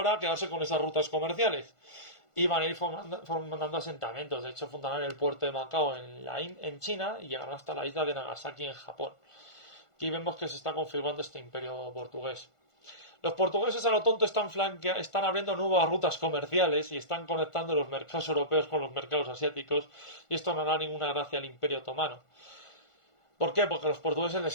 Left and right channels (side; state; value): right; late; 1.5 ms